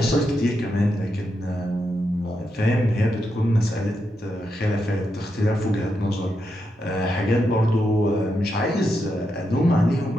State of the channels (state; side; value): normal; both; correlation 0.84